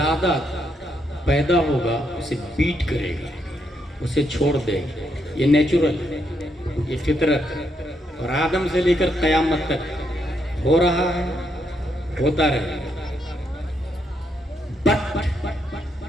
پیدا ہوگا اسے بیٹ کرے گا اسے چھوڑ دے گا. یہ نیچرل ہے یہ فطرت ہے اور آدم سے لے کر قیامت تک ہو رہا ہے ہوتا رہے گا. بٹ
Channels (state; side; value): normal; both; correlation 0.78